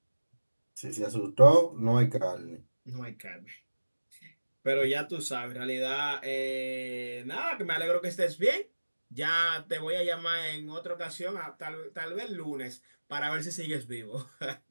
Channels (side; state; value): both; inverted; correlation -1.00